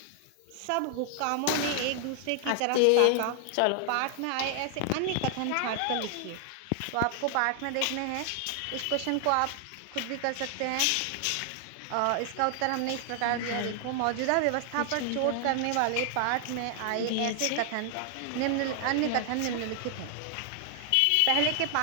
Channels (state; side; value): different; both; correlation 0.00